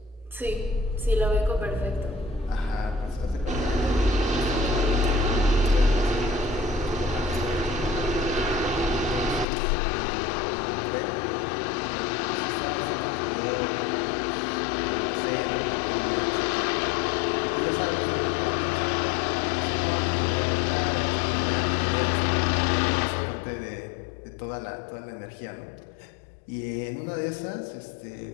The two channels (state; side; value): drops out; right; at 9.5 s